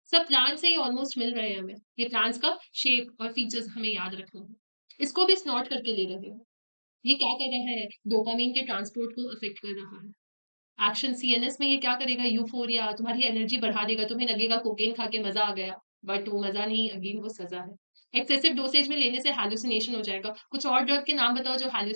सब प्लांट से ही ऑलमोस्ट मिल रहे हैं हमें ये प्लांट्स का शेप और फीचर्स हमें याद रखना है इसको भी स्नॉट करके ले रहे हैं ये क्या कर रहा है डोपामिन के ट्रांसपोर्ट को अफेक्ट कर रहा है एक्शन सीएनएस में ये क्या करेगा यूफोरिया तुम्हारी एनर्जी बढ़ा देगा तुम्हें लगेगा कोकेन खा के मजा आ गया बट वो मजा नहीं अगेन वो सजा है एक्सेसिव डोसेज में लेने से हैलुसिनेशन हो जाएगा कुछ और ड्रग के नाम बताओ जो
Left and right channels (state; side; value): inverted; both; correlation -1.00